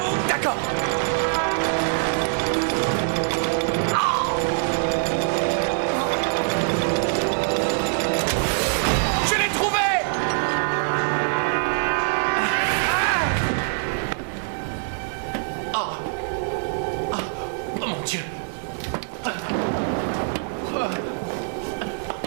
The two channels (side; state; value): left; silent; 63 dB below the other